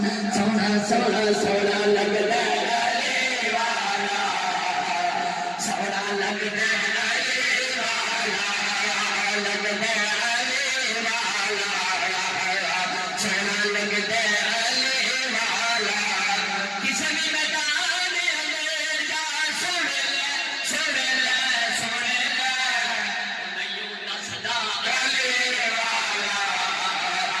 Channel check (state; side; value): identical; both; correlation 1.00